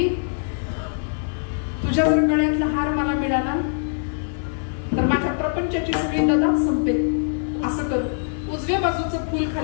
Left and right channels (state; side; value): silent; right; 55 dB below the other